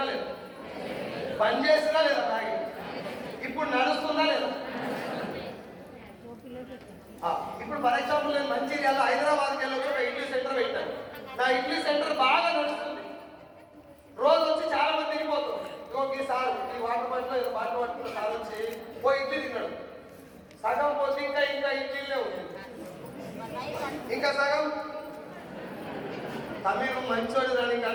లేదు, బంద్ చేసినా లేదా మ్యాగీ? ఇప్పుడు నడుస్తుందా లేదా? ఇప్పుడు ఫర్ ఎగ్జాంపుల్ నేను మంచిర్యాల హైదరాబాద్కి వెళ్ళి ఒక ఇడ్లీ సెంటర్ పెట్టాను. నా ఇడ్లీ సెంటర్ బాగా నడుస్తుంది. రోజు వచ్చి చాలా మంది తిరిగిపోతారు. ఇంకొక సార్ ఈ వాటర్ బాటిల్ ఏదో బాటిల్ పట్టుకున్న సార్ వచ్చి ఓ ఇడ్లీ తిన్నాడు. సగం పోతే ఇంకా ఇంకా ఇడ్లీలే ఉంటుంది, ఇంకా సగం తమిళ మంచోడు దానికి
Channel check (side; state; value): both; identical; correlation 1.00